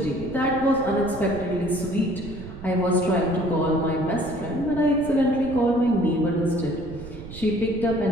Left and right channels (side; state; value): right; noise; rumble, 13 dB below the sound